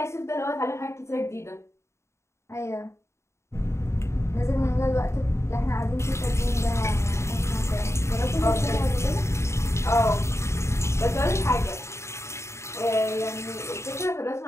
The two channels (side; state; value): right; late; 0.13 ms